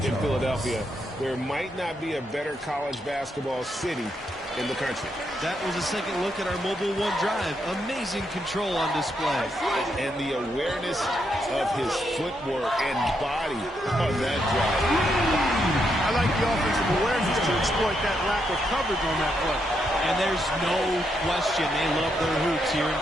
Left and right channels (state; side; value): normal; both; correlation 0.79